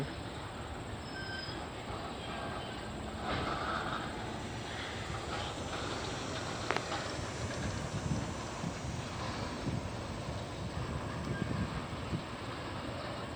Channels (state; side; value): identical; both; correlation 1.00